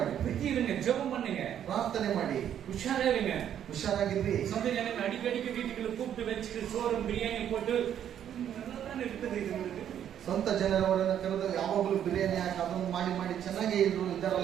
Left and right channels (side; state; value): left; quieter; 9.8 dB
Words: புத்தி இருங்க, ஜெபம் பண்ணுங்க, ಪ್ರಾರ್ಥನೆ ಮಾಡಿ, உஷாரா இருங்க, ಹುಷಾರಾಗಿರ್ರಿ. சொந்த ஜனங்க அடிக்கடிக்கு வீட்டுக்குள்ள கூப்பிட்டு வச்சுட்டு சோறும் பிரியாணி போட்டு நல்லா இருக்குது. இது உங்களுக்கு ಸ್ವಂತ ಜನರವರನ್ನ ಕರೆದು ಯಾವಾಗಲೂ ಬಿರಿಯಾನಿ ಹಾಕಿ ಅದನ್ನು ಮಾಡಿ ಮಾಡಿ ಚೆನ್ನಾಗಿ